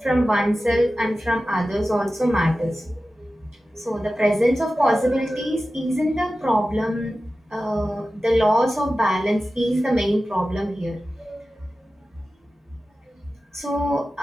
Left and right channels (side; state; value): both; normal; correlation 0.94